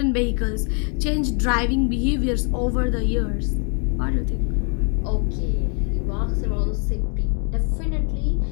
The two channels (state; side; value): quieter; right; 39.4 dB